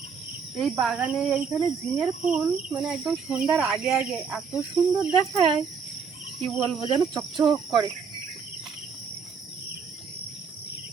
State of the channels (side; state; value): left; quieter; 5.9 dB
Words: এই বাগানে এইখানে ঝিঙের ফুল মানে একদম সন্ধ্যার আগে আগে এত সুন্দর দেখায়, কি বলবো, যেন চকচক করে।